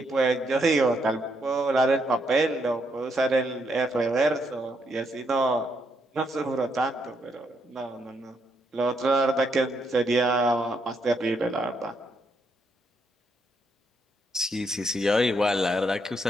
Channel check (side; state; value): both; normal; correlation 0.76